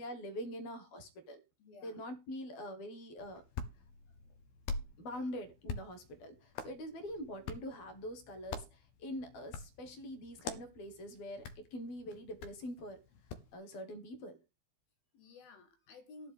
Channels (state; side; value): late; right; 12 ms